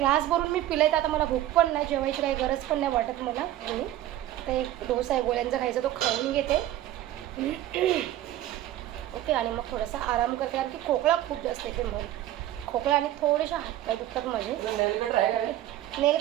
भरून मी पिलाय. तर आता मला भूक पण नाही, जेवायची काही गरज पण नाही वाटत मला. आणि आता एक डोसा आहे गोळ्यांचा खायचा, तो खाऊन घेते. ओके, आणि मग थोडासा आराम करते कारण की खोकला खूप जास्त येते. मग खोकला आणि थोडेसे हातपाय दुखतात माझे. नेल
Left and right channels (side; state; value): left; quieter; 13.6 dB